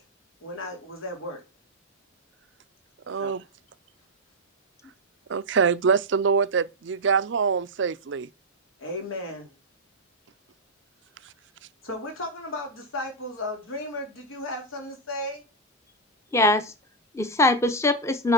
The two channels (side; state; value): both; normal; correlation -0.04